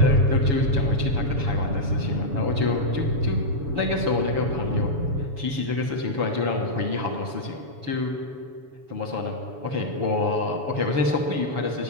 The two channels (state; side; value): late; left; 7.1 ms